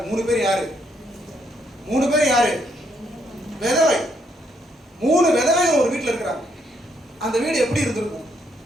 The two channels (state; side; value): normal; both; correlation 0.73